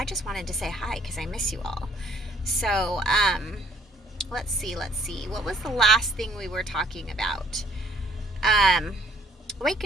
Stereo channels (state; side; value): normal; both; correlation 0.61